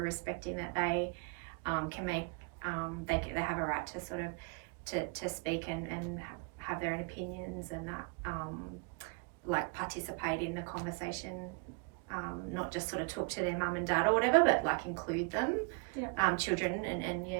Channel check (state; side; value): quieter; left; 32.5 dB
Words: respecting that they can make, they have a right to sort of to speak and have their own opinions, and that like participate in the conversation, not just sort of talk to their mum and dad or whatever, but like include them, children